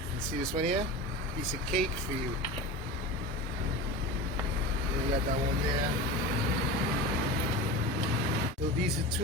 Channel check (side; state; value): both; normal; correlation 0.29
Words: see this one here? Piece of cake for you. You got that one there. So these are